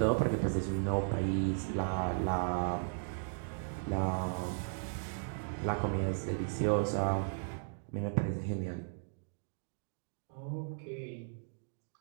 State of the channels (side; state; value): left; silent; digital silence